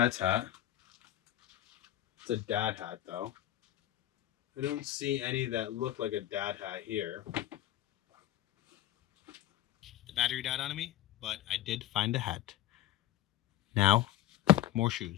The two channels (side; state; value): right; quieter; 13.5 dB